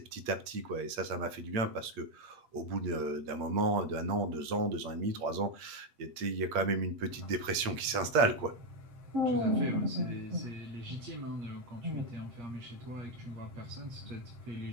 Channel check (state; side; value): late; left; 8.6 ms